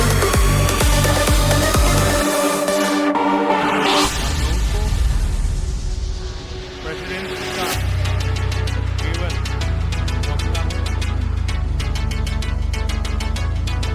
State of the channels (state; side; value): identical; both; correlation 1.00